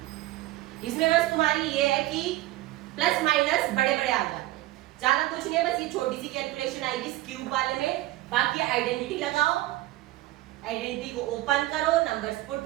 इसमें बस तुम्हारी ये है कि प्लस माइनस बड़े बड़े आ जाते हैं, ज्यादा कुछ नहीं है, बस ये छोटी सी कैलकुलेशन आएगी इस क्यूब वाले में। बाकी आइडेंटिटी लगाओ, आइडेंटिटी को ओपन करो, नंबर्स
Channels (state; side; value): quieter; left; 16.7 dB